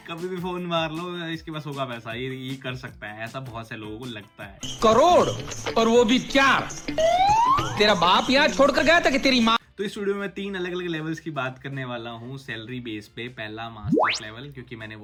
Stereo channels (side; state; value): both; identical; correlation 1.00